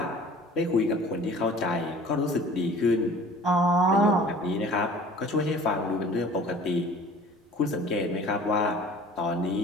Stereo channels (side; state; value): both; normal; correlation 0.46